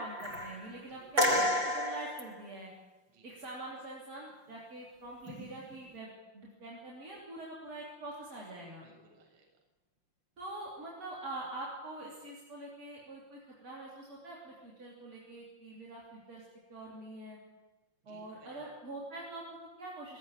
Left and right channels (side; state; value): left; late; 5.7 ms